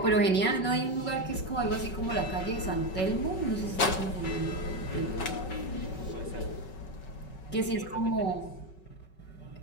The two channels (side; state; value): right; late; 5.3 ms